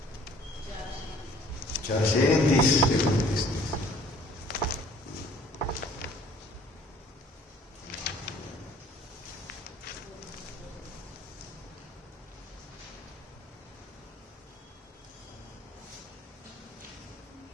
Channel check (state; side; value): normal; both; correlation 0.54